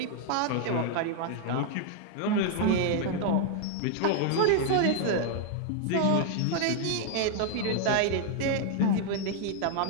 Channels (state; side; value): different; both; correlation 0.00